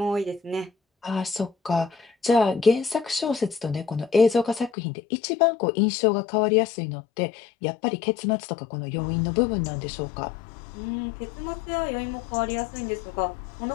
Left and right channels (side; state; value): right; drops out; at 4.7 s